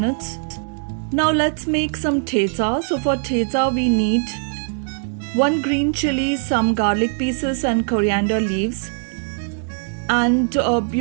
Now let's make some thecha. So for thecha we need 1 green chili, some garlic pieces and coriander leaves. And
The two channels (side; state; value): left; silent; digital silence